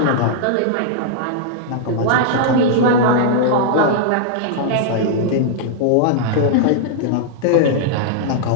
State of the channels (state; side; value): different; both; correlation -0.01